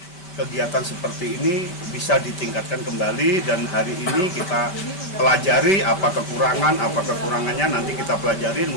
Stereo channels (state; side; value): late; right; 5.2 ms